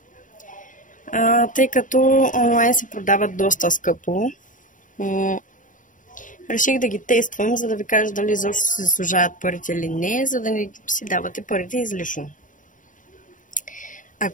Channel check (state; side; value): late; right; 0.38 ms